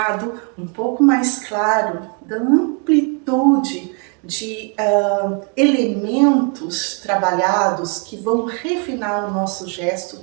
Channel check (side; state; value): left; quieter; 37.8 dB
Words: um pouco mais claro da amplitude de elementos trabalhados que vão refinar o nosso gesto